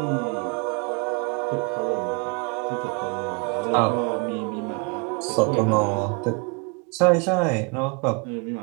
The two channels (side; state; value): left; quieter; 32.3 dB